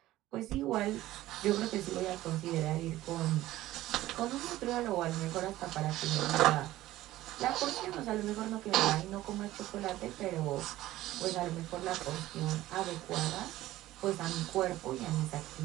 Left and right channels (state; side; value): quieter; left; 15.7 dB